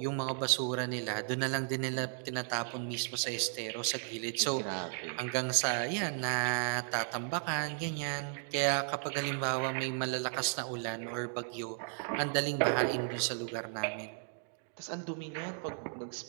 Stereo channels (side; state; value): left; silent; 55 dB below the other